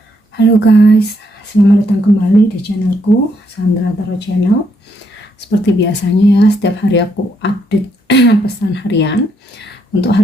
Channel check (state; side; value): normal; both; correlation 0.74